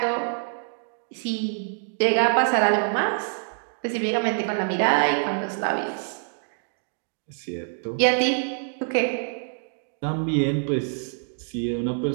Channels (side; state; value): left; silent; digital silence